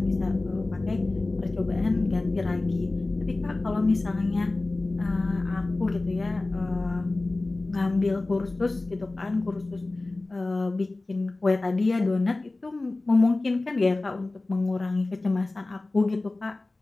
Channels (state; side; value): quieter; right; 3.1 dB